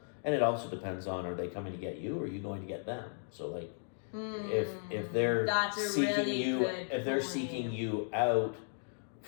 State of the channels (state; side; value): silent; right; digital silence